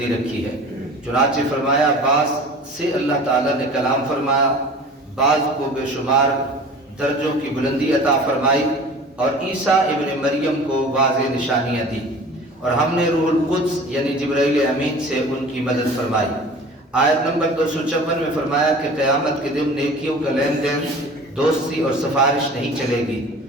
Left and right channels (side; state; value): both; normal; correlation 0.41